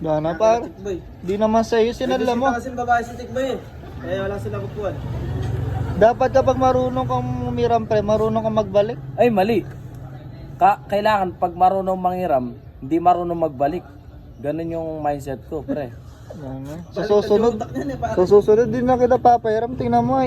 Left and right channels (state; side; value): identical; both; correlation 1.00